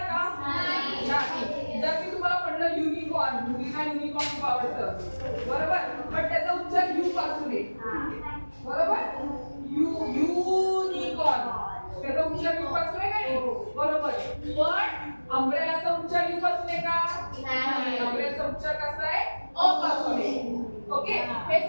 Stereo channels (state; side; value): inverted; both; correlation -1.00